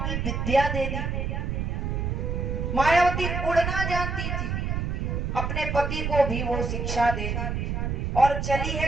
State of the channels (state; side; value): noise; right; rumble, 1 dB below the sound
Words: विद्या दे दी। मायावती उड़ना जानती थी, अपने पति को भी वो शिक्षा दे दी और चली है